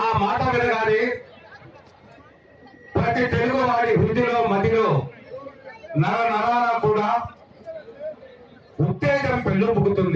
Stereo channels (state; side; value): identical; both; correlation 1.00